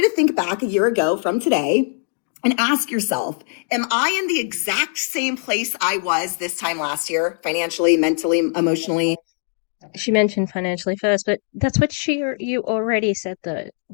to think back a year ago from today and ask yourself, am I in the exact same place I was this time last year, financially, mentally, emotionally? She mentioned financially first, but that's what you already said though.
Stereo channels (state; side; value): silent; right; digital silence